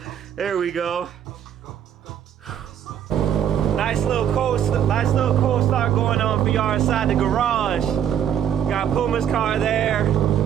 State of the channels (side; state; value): left; quieter; 9.7 dB